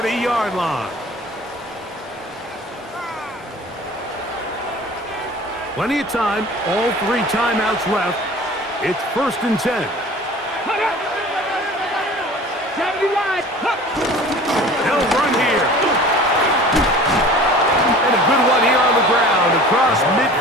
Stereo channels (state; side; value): normal; both; correlation 0.43